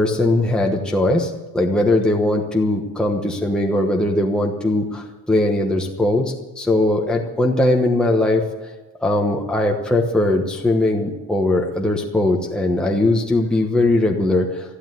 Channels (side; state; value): both; normal; correlation 0.72